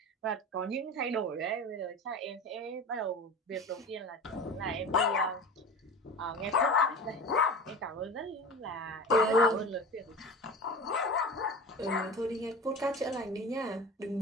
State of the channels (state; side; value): normal; both; correlation 0.33